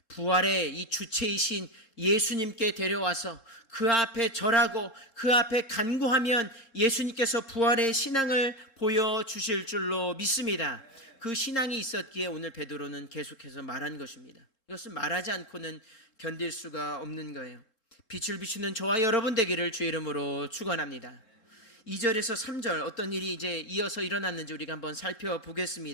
부활의 이 주체이신 예수님께 데려와서 그 앞에 절하고 그 앞에 간구하면 예수님께서 부활의 신앙을 보여주실 줄로 믿습니다. 그 신앙이 있었기에 오늘 베드로는 계속해서 말한 것입니다. 이것은 말하지 않고는 견딜 수가 없는 거예요. 빛을 비추는 저와 여러분 되기를 주의 이름으로 축원합니다. 2절에서 3절 어떤 일이 이제 이어서 일어났는지 우리가 한번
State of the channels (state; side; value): late; right; 3.7 ms